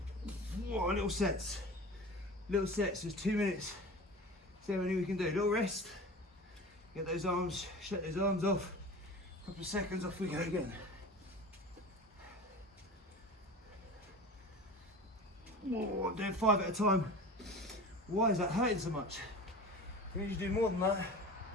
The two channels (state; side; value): normal; both; correlation 0.36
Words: Whoa, little sets. Little sets, there's 2 minutes. See how many we can do. Little rest. Get those arms, shut those arms off. Couple of seconds, off we go again. Whoa, I'm doing 5 at a time. Why is that hurting so much? You need to do more than that.